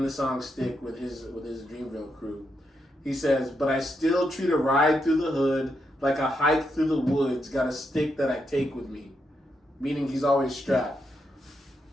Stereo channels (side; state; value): both; normal; correlation 0.82